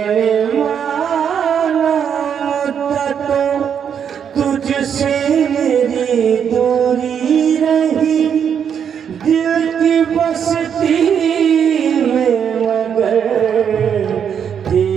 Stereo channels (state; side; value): quieter; left; 7.9 dB